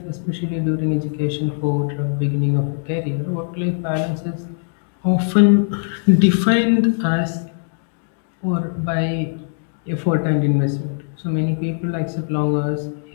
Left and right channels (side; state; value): right; silent; digital silence